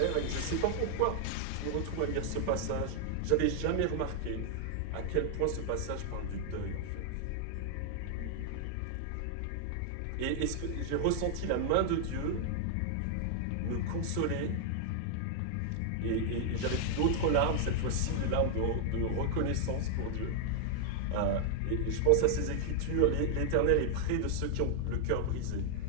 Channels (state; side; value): different; both; correlation 0.00